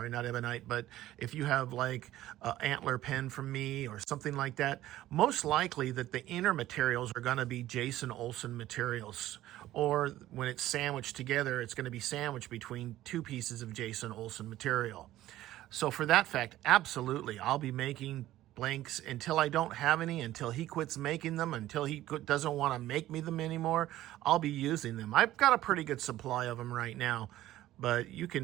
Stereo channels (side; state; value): left; quieter; 14.6 dB